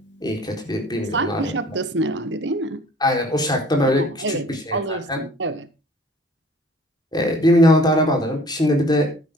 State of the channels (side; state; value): both; normal; correlation 0.51